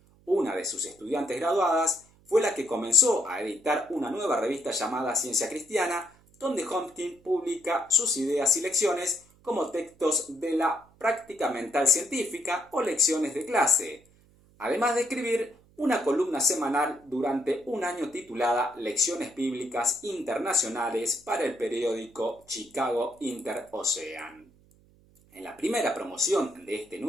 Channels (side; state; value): right; noise; hum, 30 dB below the sound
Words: Una de sus estudiantes graduadas fue la que comenzó a editar una nueva revista llamada Ciencia Cristiana, donde Hopkins publica sus ideas y lecciones como textos de la práctica mental científica o lecciones de clase, además de escribir una columna semanal durante un año titulada Lecciones Bíblicas Internacionales para el periódico Chicago Inter-Ocean. En la primera promoción de este